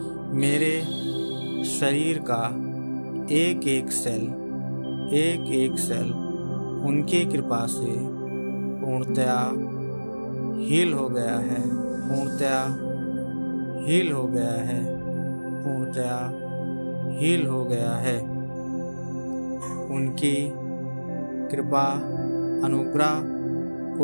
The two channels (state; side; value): inverted; both; correlation -1.00